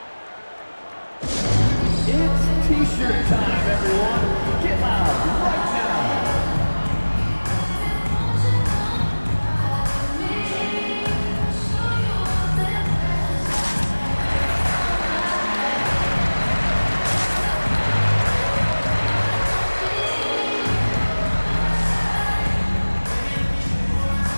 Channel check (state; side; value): inverted; both; correlation -1.00